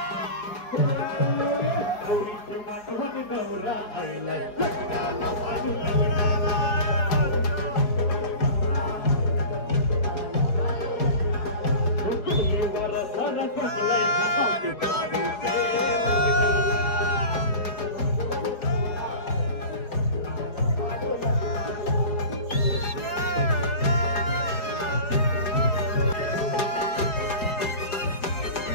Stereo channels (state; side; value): late; right; 4.8 ms